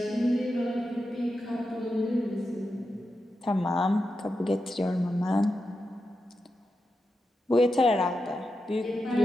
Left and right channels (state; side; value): normal; both; correlation 0.88